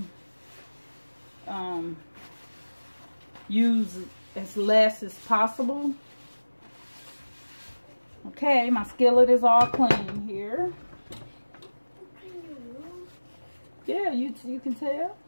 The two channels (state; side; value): inverted; both; correlation -1.00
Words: use as less as possible. Okay, my skillet is all clean here. Yeah, you can tell.